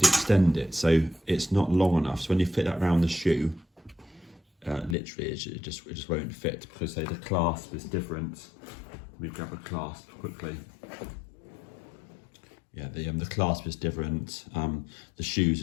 extend it so it's not long enough. So when you fit that around the shoe, literally it just won't fit because say the clasp is different. Let me grab a clasp quickly. Yeah, the clasp is different. The shoes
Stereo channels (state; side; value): drops out; right; at 5.0 s